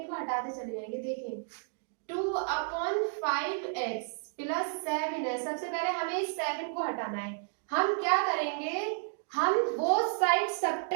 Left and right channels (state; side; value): silent; left; digital silence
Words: हटाते चले जाएंगे। देखिए 2/5x प्लस 7 है, सबसे पहले हमें इस 7 को हटाना है। हम क्या करेंगे? हम बोथ साइड